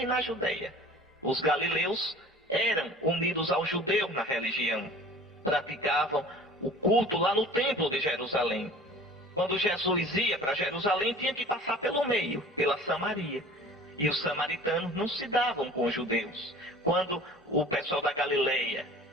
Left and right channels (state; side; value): normal; both; correlation 0.45